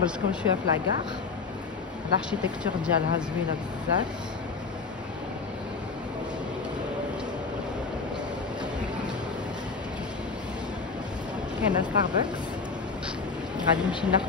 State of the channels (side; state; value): right; quieter; 4.7 dB